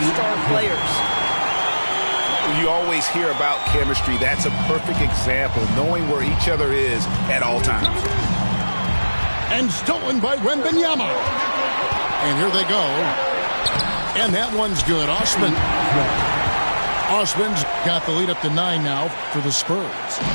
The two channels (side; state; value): both; inverted; correlation -1.00